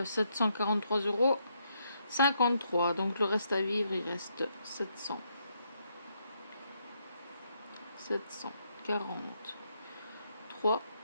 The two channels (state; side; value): inverted; both; correlation -0.77